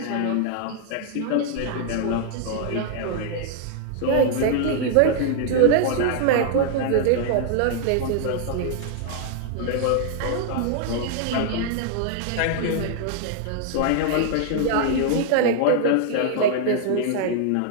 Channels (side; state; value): both; different; correlation -0.01